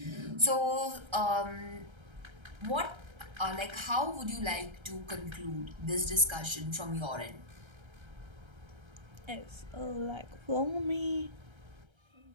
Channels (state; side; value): late; left; 1.3 ms